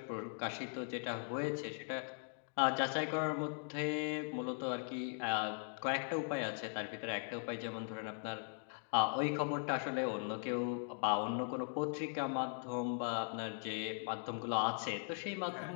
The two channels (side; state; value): right; silent; 51 dB below the other